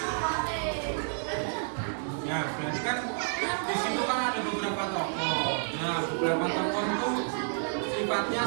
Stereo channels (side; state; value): left; silent; digital silence